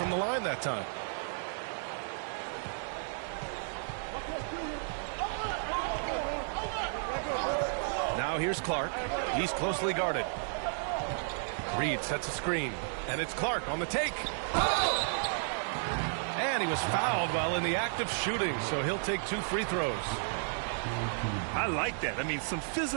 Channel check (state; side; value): silent; left; 56 dB below the other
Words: the line that time. Now here's Clark. He's closely guarded. Reed sets a screen. And it's Clark on the take. And he was fouled while in the act of shooting, so he'll take 2 free throws. I like that. I mean, some